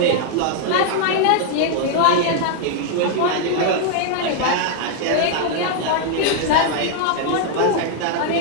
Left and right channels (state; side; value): different; both; correlation 0.00